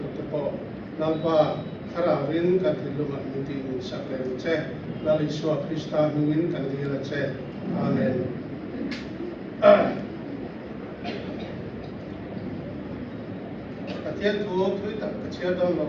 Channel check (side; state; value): both; identical; correlation 1.00